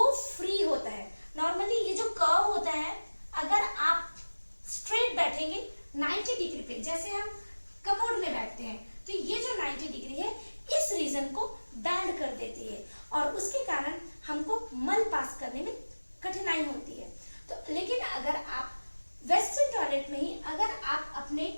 फ्री होता है। नॉर्मली ये जो कर्व होता है, अगर आप स्ट्रेट बैठेंगे 90 डिग्री पे, जैसे हम कमोड में बैठते हैं, तो ये जो 90 डिग्री है इस रीजन को बैंड कर देती है और उसके कारण हमको मल पास करने में कठिनाई होती है। तो लेकिन अगर आप वेस्टर्न टॉयलेट में ही अगर आप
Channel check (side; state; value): both; inverted; correlation -1.00